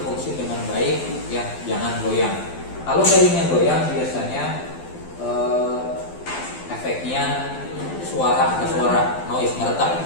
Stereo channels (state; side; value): late; right; 12 ms